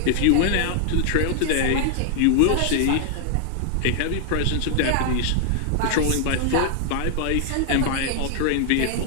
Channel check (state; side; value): different; both; correlation 0.00